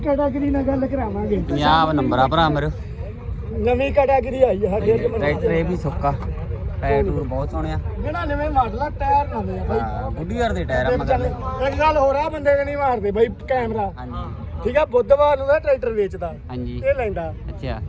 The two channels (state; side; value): identical; both; correlation 1.00